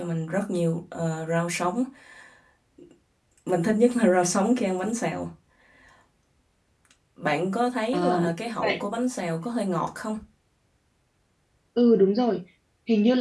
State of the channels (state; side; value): identical; both; correlation 1.00